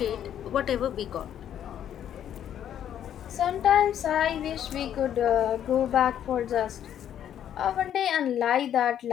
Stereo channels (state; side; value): quieter; right; 10.1 dB